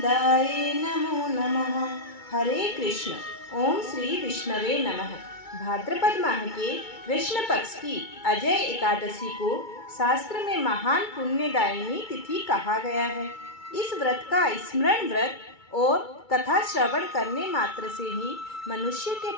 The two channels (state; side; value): late; right; 2.3 ms